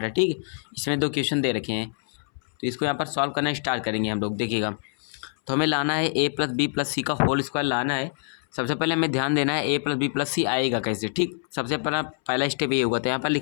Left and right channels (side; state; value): right; silent; 61 dB below the other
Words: है। ठीक, इसमें 2 क्वेश्चन दे रखे हैं, तो इसको यहाँ पर सॉल्व करना स्टार्ट करेंगे हम लोग। देखिएगा, तो हमें लाना है a प्लस बी प्लस सी का होल स्क्वायर लाना है। सबसे पहले हमें ध्यान देना है a प्लस बी प्लस सी आएगा कैसे। ठीक, सबसे पहला स्टेप ये होगा, तो यहाँ पर